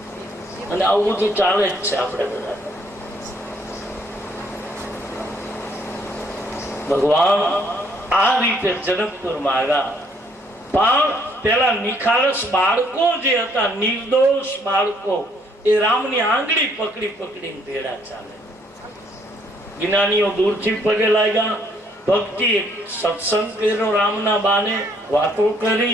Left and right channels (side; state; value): both; normal; correlation 0.66